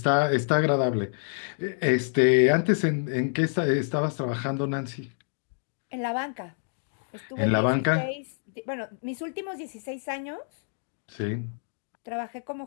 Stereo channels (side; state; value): right; silent; digital silence